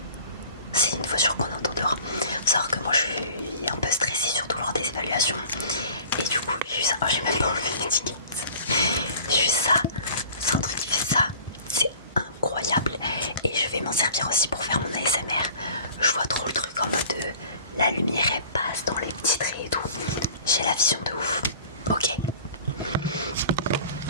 C'est une voiture qu'on entend dehors. Faut savoir que moi je suis un peu stressée, surtout lors des évaluations. Et du coup j'ai eu ça. Oh, j'ai même pas enlevé l'étiquette. J'ai eu ça. C'est un truc qui fait ça. C'est incroyable. Et je vais m'en servir aussi pour faire mon ASMR. Je vois trop le truc en mode la lumière elle passe dans les petits traits et tout. J'ai la vision de ouf. Ok.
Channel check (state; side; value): inverted; both; correlation -0.45